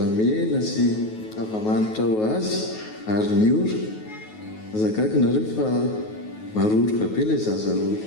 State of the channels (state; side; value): late; right; 9.3 ms